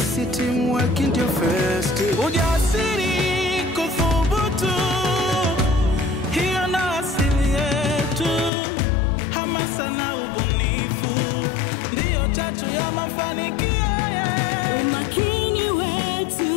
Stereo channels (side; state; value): right; drops out; at 8.5 s